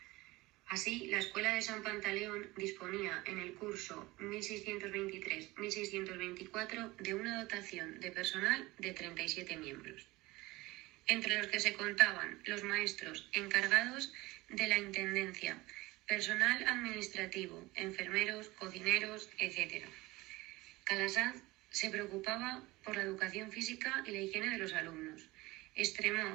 Así, la Escuela de San Pantaleón disponía en el curso 1623-1624 de una dotación de personal de 37 miembros, entre los que se contaban los maestros encargados de la intendencia, personal administrativo, enfermeros, cocineros, etc. Calasanz se preocupaba por la educación física y la higiene de los alumnos.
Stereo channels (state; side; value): quieter; left; 20.7 dB